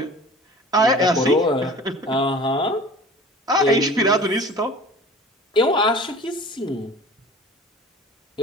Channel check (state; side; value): normal; both; correlation 0.42